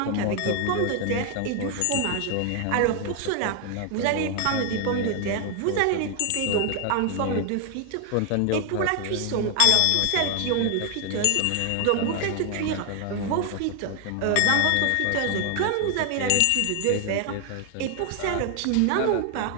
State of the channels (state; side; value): different; both; correlation 0.00